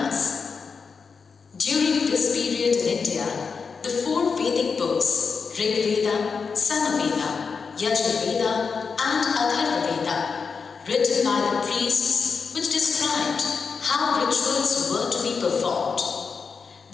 During this period in India, the four Vedic books, Rig Veda, Samaveda, Yajurveda and Atharva Veda, written by the priests, which described how rituals were to be performed.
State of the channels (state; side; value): quieter; right; 5.3 dB